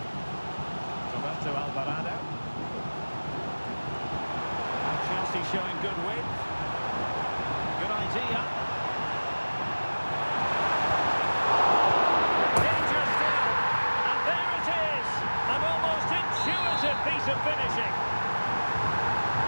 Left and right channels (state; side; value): inverted; both; correlation -1.00